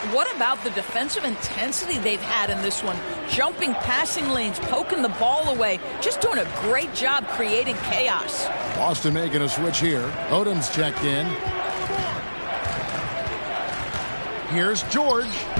What about the defensive intensity they've had in this one? Jumping passing lanes, poking the ball away, just doing a great job creating chaos. Boston making a switch here. Odom's checked in. Here's George.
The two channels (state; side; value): inverted; both; correlation -1.00